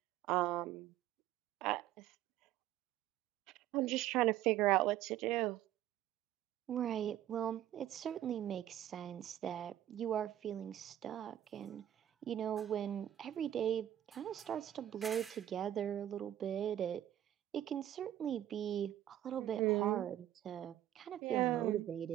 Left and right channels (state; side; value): quieter; left; 12.3 dB